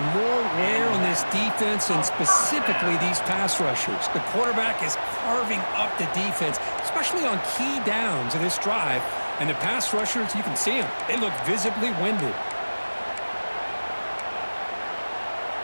more wear on this defense and specifically these pass rushers. The quarterback is carving up the defense, especially on key downs of this drive. And the pass rushers, you can see them. They look visibly winded.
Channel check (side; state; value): both; inverted; correlation -1.00